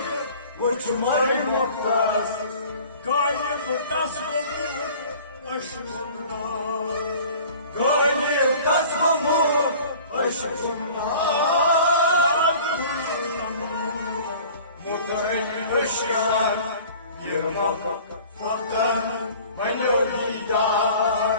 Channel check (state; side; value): inverted; both; correlation -0.46